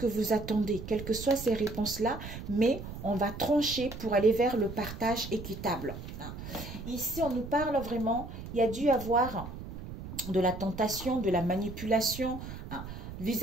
vous attendez, quelles que soient ces réponses-là, mais on va trancher pour aller vers le partage équitable. Ici, on nous parle vraiment, il y a dû avoir de la tentation, de la manipulation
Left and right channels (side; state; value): right; noise; rumble, 10 dB below the sound